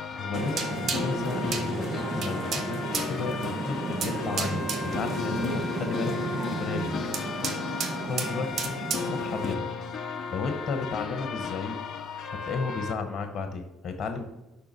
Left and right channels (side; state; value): both; normal; correlation 0.62